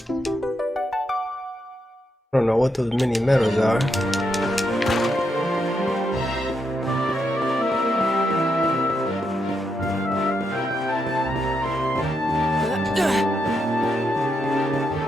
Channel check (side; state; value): both; normal; correlation 0.81